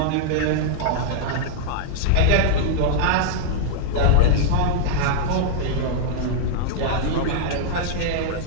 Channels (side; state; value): both; different; correlation -0.01